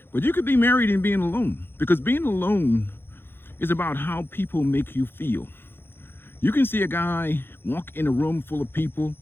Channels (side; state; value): right; late; 0.10 ms